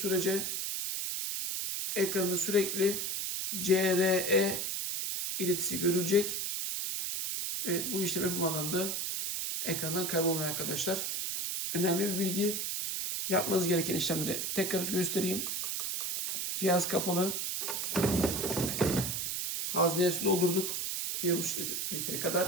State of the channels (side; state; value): right; noise; hiss, 1 dB below the sound